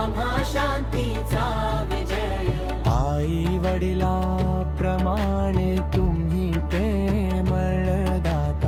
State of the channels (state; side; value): identical; both; correlation 1.00